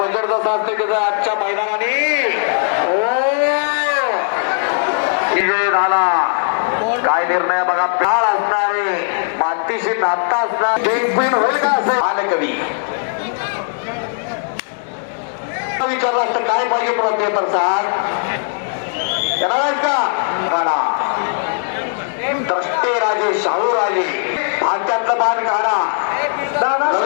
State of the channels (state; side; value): silent; right; digital silence